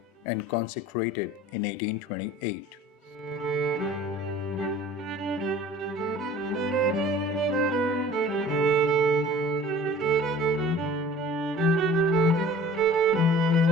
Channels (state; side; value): normal; both; correlation 0.46